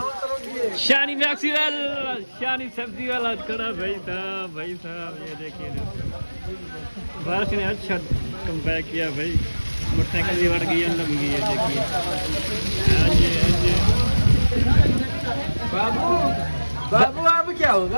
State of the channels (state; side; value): inverted; both; correlation -1.00